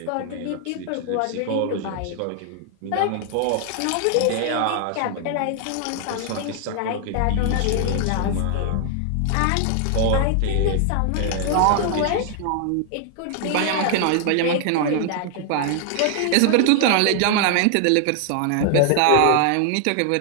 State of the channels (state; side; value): different; both; correlation 0.00